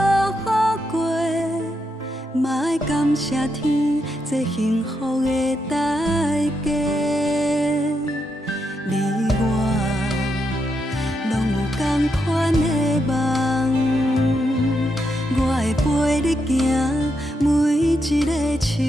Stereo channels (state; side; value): normal; both; correlation 0.82